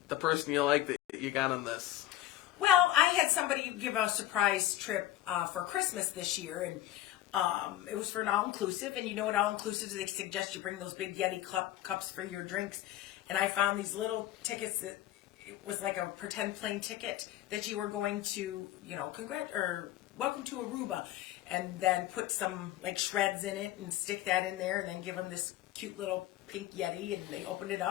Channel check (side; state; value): right; quieter; 14.0 dB